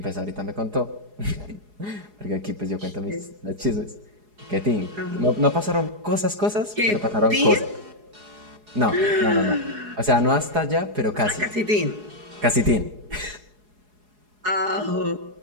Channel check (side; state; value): left; late; 4.8 ms